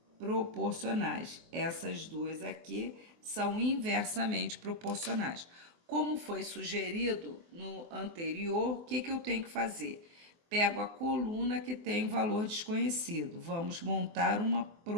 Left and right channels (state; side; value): late; left; 24 ms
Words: proporcionais. Essas duas aqui são inversamente proporcionais. Como foi sugerido no anterior, o que eu tenho que fazer? Pego a coluna que tem valor desconhecido. Vamos montar uma